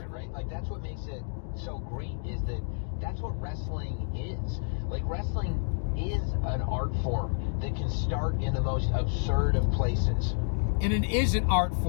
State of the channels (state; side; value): silent; right; digital silence